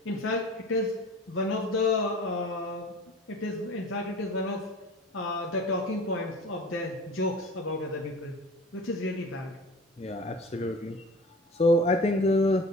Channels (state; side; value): normal; both; correlation 0.39